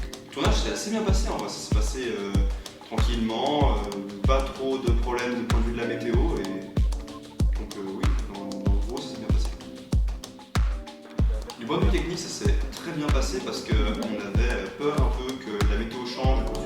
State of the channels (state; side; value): identical; both; correlation 1.00